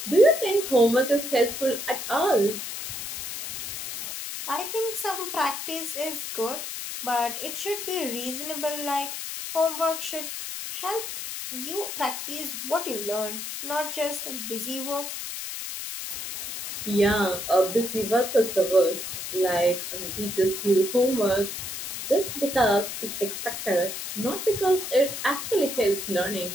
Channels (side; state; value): left; noise; hiss, 6 dB below the sound